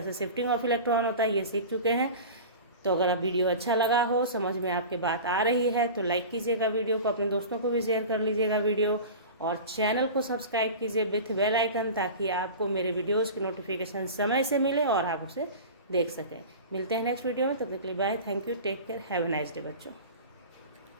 से शिफ्टिंग ऑफ इलेक्ट्रॉन होता है ये सीख चुके हैं। तो अगर आप वीडियो अच्छा लगा हो, समझ में आपके बात आ रही है, तो लाइक कीजिएगा वीडियो को, अपने दोस्तों को भी शेयर कर लीजिएगा वीडियो, और चैनल को सब्सक्राइब कीजिए विथ बेल आइकन, ताकि आपको मेरे वीडियोस की नोटिफिकेशन समय से मिले और आप उसे देख सकें। मिलते हैं नेक्स्ट वीडियो में, तब तक के लिए bye, thank you, take care, have a nice day बच्चों।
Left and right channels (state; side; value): inverted; both; correlation -0.33